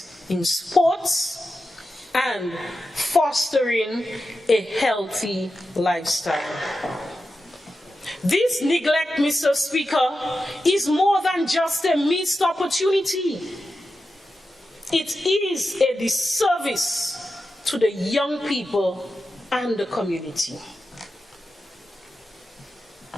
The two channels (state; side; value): normal; both; correlation 0.91